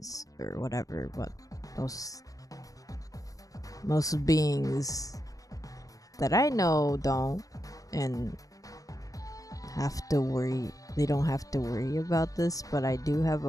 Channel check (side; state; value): right; late; 0.17 ms